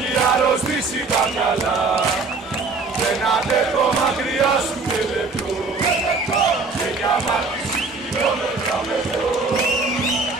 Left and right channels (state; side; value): quieter; left; 4.0 dB